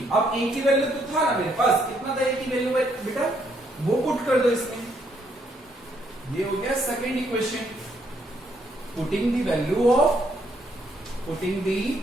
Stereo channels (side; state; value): both; normal; correlation 0.71